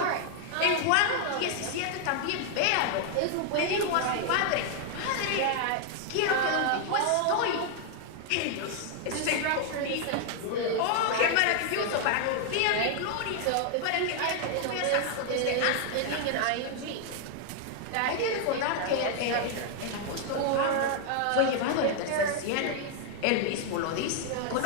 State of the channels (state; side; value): different; both; correlation 0.00